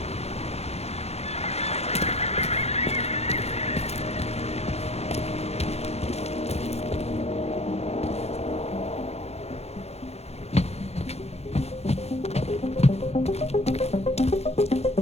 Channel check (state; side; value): late; right; 0.31 ms